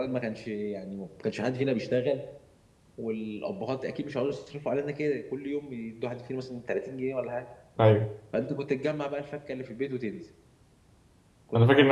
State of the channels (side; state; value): both; identical; correlation 1.00